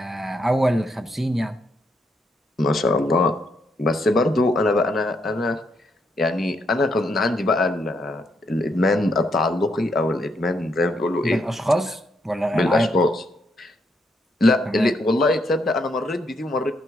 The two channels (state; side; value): normal; both; correlation 0.77